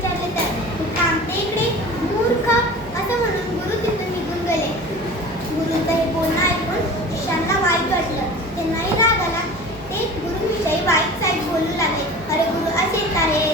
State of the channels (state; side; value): normal; both; correlation 0.38